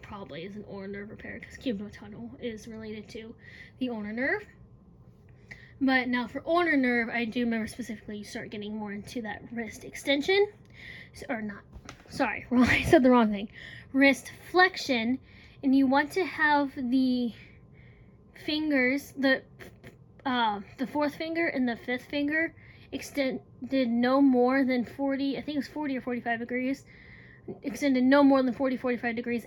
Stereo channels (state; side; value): identical; both; correlation 1.00